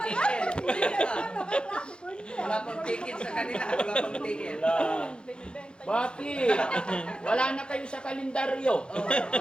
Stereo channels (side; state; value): right; late; 0.052 ms